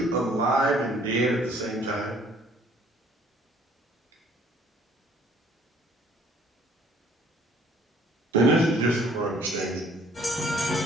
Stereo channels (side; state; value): both; normal; correlation 0.58